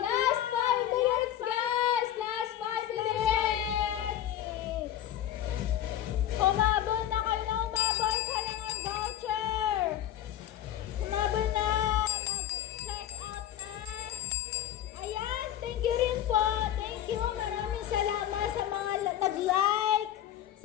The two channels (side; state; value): right; quieter; 11.5 dB